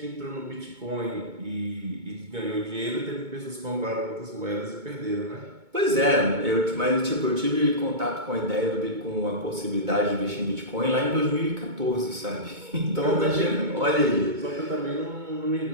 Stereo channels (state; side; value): late; left; 2.2 ms